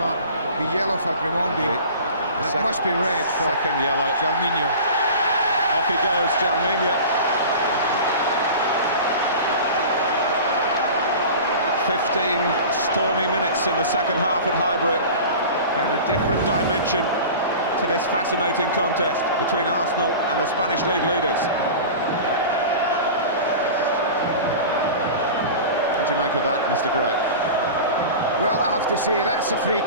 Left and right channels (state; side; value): inverted; both; correlation -0.36